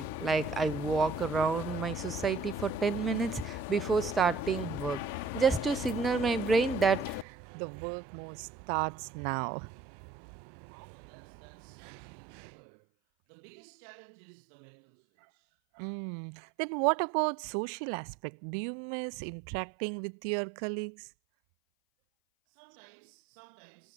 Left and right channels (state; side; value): drops out; left; at 7.2 s